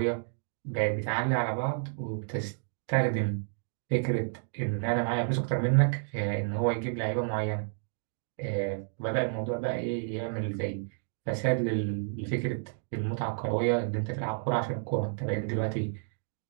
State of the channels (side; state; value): left; silent; digital silence